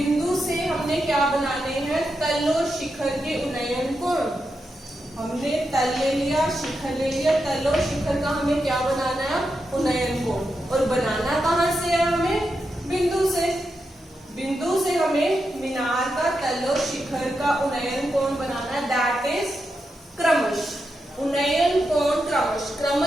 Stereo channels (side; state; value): both; normal; correlation 0.86